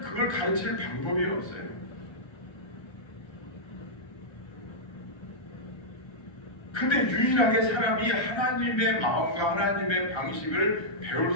가르칠 방법이 없어요. 근데 유일하게 사람이 하나님의 마음과 하나님의 방식을 배울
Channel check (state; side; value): late; right; 1.3 ms